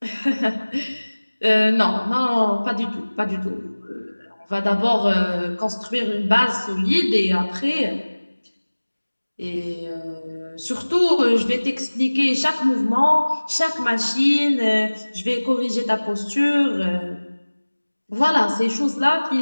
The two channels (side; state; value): both; inverted; correlation -1.00